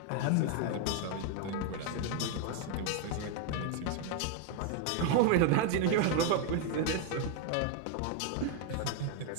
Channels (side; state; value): both; different; correlation 0.00